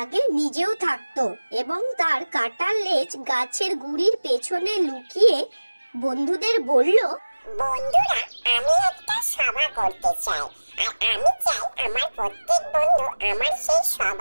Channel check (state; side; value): inverted; both; correlation -1.00